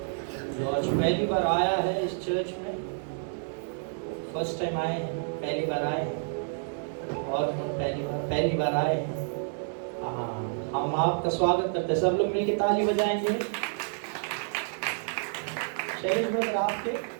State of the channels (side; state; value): left; silent; 58 dB below the other